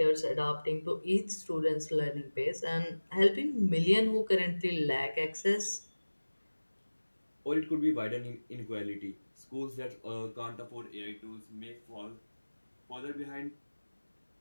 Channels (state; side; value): inverted; both; correlation -1.00